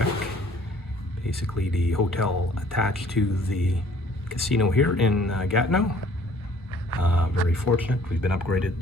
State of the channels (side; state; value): both; normal; correlation 0.57